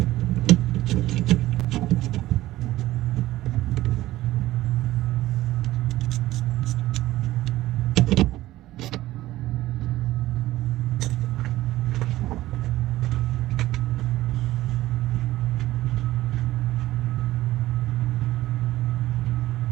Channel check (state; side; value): quieter; left; 16.0 dB